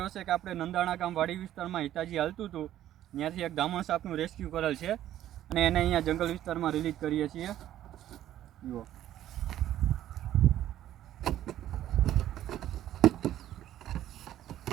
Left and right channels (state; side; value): quieter; left; 12.4 dB